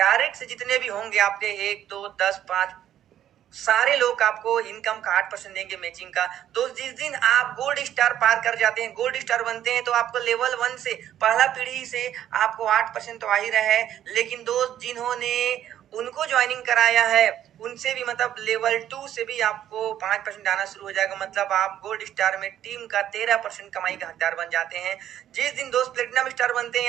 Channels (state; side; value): quieter; left; 11.2 dB